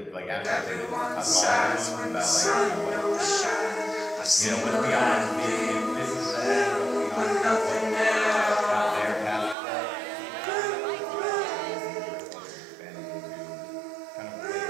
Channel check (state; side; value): drops out; left; at 9.6 s